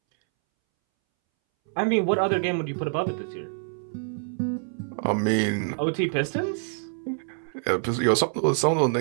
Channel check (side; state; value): left; silent; 61 dB below the other